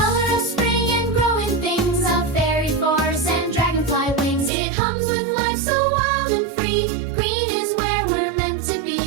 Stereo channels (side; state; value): left; drops out; at 4.5 s